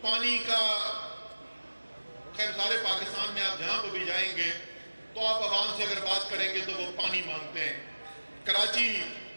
پانی کا خیر سارے پاکستان میں آپ جہاں پہ بھی جائیں گے تو آپ عوام سے اگر بات کریں گے تو وہ پانی مانگتے ہیں۔ کراچی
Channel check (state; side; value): inverted; both; correlation -1.00